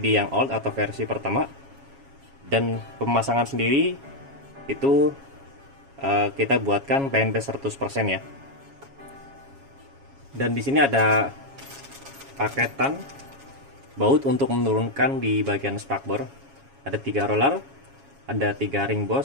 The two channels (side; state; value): left; late; 7.3 ms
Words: yang old atau versi pertama. Dan pemasangan sendiri itu kita buatkan PNP 100% ya. Dan di sini ada paketan baut untuk menurunkan di bagian spakbor. Ada 3 roller, ada 3 ring